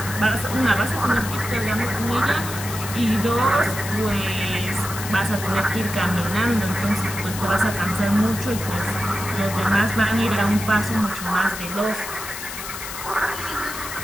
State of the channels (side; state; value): left; noise; hiss, 9 dB below the sound